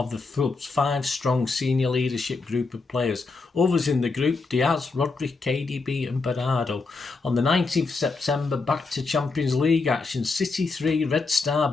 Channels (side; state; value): right; quieter; 3.9 dB